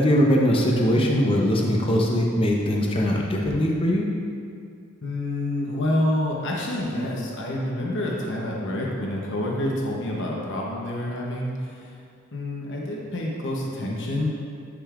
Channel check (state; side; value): normal; both; correlation 0.72